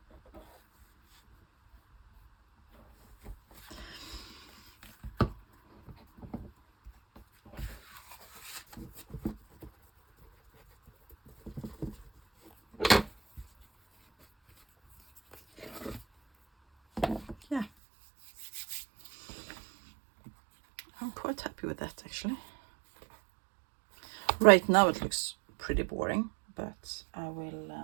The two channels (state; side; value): drops out; left; at 17.7 s